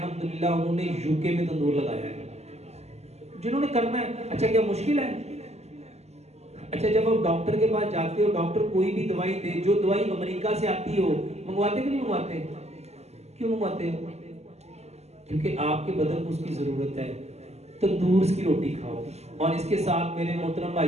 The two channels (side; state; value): left; late; 0.31 ms